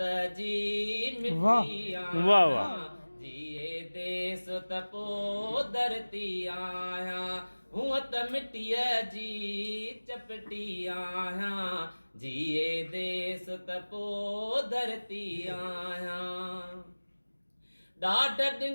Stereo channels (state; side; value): inverted; both; correlation -1.00